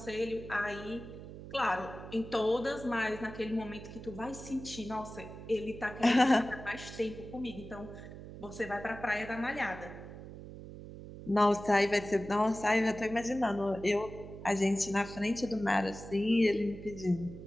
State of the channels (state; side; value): noise; right; hum, 13 dB below the sound